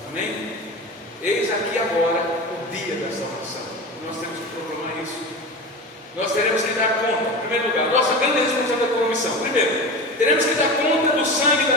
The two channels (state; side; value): normal; both; correlation 0.28